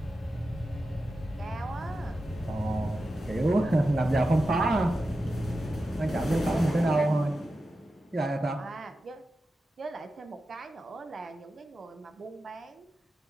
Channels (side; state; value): both; normal; correlation 0.91